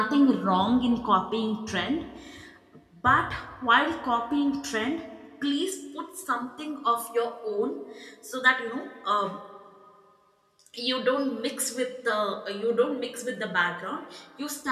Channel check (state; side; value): identical; both; correlation 1.00